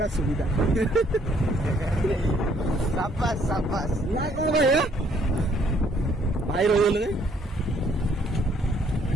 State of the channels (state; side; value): normal; both; correlation 0.65